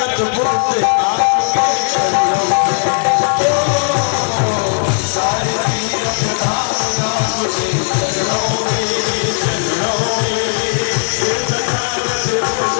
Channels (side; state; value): right; silent; digital silence